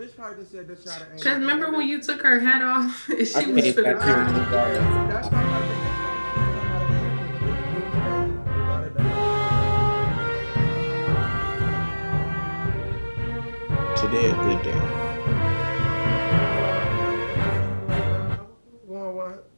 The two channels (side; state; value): both; inverted; correlation -1.00